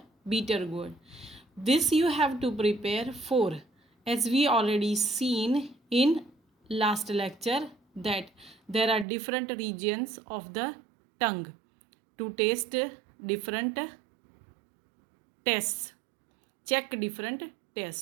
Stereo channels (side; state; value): left; drops out; at 9.1 s